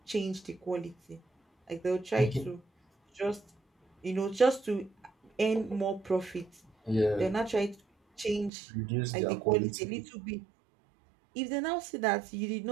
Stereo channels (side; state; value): left; drops out; at 8.5 s